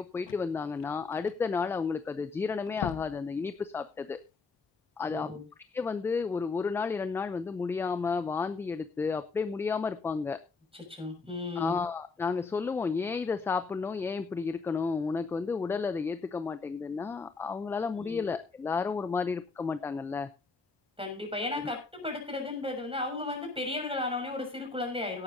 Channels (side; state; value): right; quieter; 4.3 dB